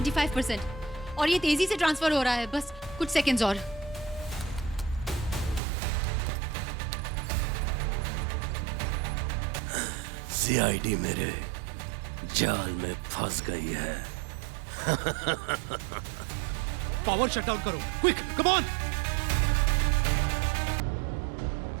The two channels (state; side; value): drops out; left; at 5.6 s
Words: और ये तेजी से ट्रांसफर हो रहा है, बस कुछ सेकंड्स और। सीआईडी मेरे जाल में फंस गई है। पावर शट डाउन करो, quick, come on.